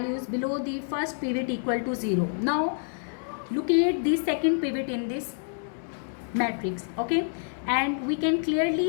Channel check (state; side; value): silent; right; 60 dB below the other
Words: below the first pivot equal to 0. Now locate the second pivot in this matrix. Okay, and we can